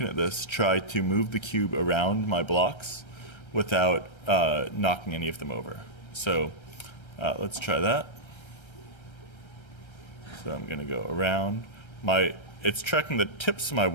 at this, try to move the cube around my blocks without knocking any of them over. So let's try that. So I'm going to go around. It's tracking the tips of my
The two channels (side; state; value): right; late; 1.3 ms